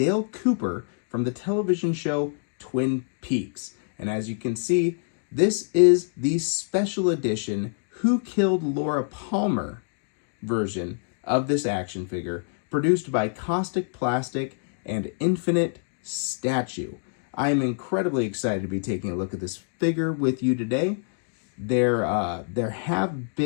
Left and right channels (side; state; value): right; silent; digital silence